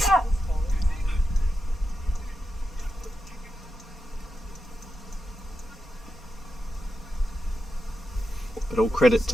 But all credit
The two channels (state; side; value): normal; both; correlation 0.88